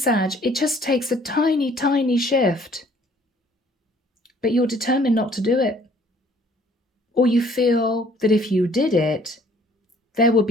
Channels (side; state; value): both; normal; correlation 0.58